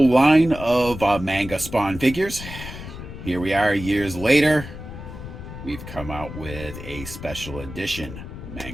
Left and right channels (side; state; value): left; noise; rumble, 11 dB below the sound